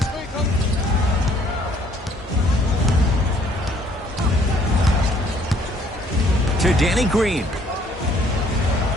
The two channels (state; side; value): normal; both; correlation 0.62